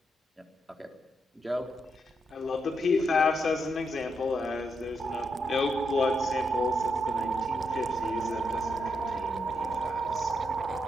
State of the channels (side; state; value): both; normal; correlation 0.81